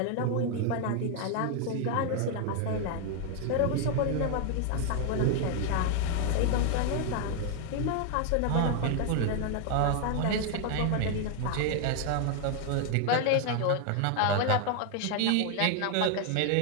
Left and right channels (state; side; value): different; both; correlation 0.01